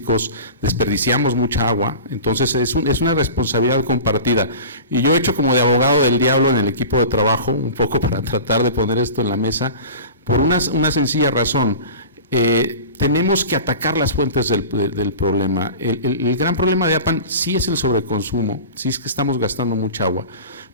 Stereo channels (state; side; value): inverted; both; correlation -0.35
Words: desperdiciamos mucha agua, entonces es una responsabilidad compartida. Y yo he hecho como de abogado del diablo en el equipo de trabajo, un poco para tratar de poner esto en la mesa, por una sencilla razón. Tenemos que atacar las fuentes del problema. El gran problema de Apan sí es el sobreconsumo, sí es que estamos gastando mucha agua,